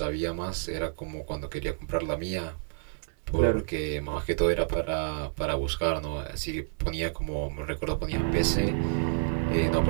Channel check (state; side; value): silent; left; digital silence